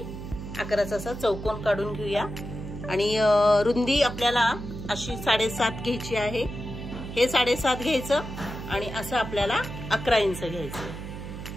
11चा असा चौकोन काढून घेऊया आणि रुंदी आपल्याला अशी 7.5 घ्यायची आहे। हे 7.5 घ्यायचं आणि असं आपल्याला 11 इंच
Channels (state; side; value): noise; right; hum, 9 dB below the sound